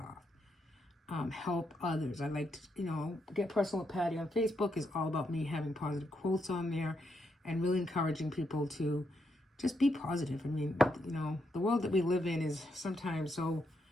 help others. I like to, get personal with Patty on Facebook is all about me having positive quotes on there and really encouraging people to just be positive. I mean, the world that we live in is sometimes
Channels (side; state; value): both; normal; correlation 0.79